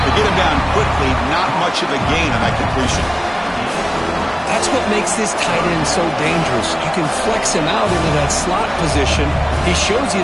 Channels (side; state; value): both; identical; correlation 1.00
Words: They get him down quickly. Not much of a gain on that completion. That's what makes this tight end so dangerous. You can flex him out into that slot position. He shows